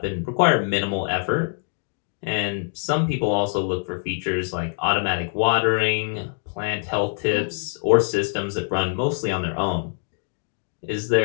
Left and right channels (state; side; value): silent; right; digital silence